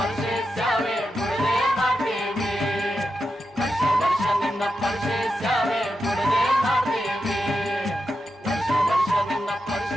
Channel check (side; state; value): both; normal; correlation 0.88